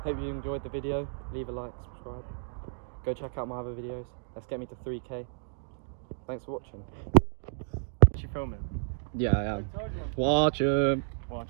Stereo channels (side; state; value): left; silent; digital silence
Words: hope you enjoyed the video. Leave a like, subscribe. Go check out my other videos. Let's get me to 3K. Thanks for watching. Is she filming? Yeah, I am. Watch 'em. Watch